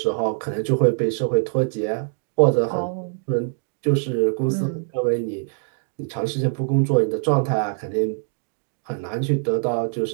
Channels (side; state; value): left; silent; digital silence